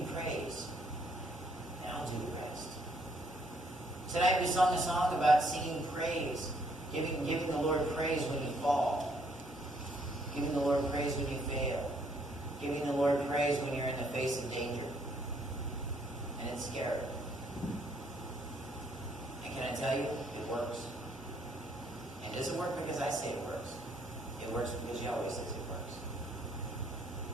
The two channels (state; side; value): normal; both; correlation 0.68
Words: praise, and I'll do the rest. Tonight we sung a song about singing praise, giving the Lord praise when you fall, giving the Lord praise when you fail, giving the Lord praise when you're in the face of danger. And it's scary. And can I tell you, it works. And does it work because I say it works? It works because Yahweh says it works.